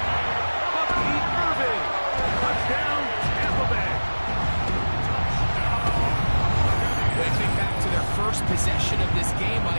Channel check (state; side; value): inverted; both; correlation -1.00